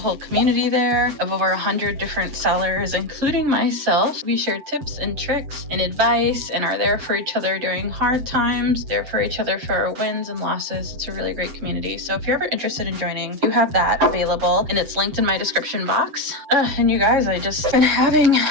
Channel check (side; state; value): left; late; 7.8 ms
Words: community there of over 100 different sellers, including myself. We share tips and tricks and advice and are there for each other during hard times, there for each other for our wins and losses. It's a really great community. So if you're ever interested in joining, you have that available and it's linked in my description box. And you guys, I just been having